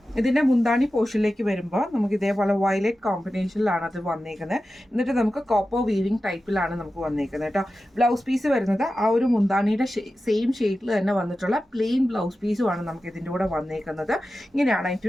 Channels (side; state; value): both; normal; correlation 0.93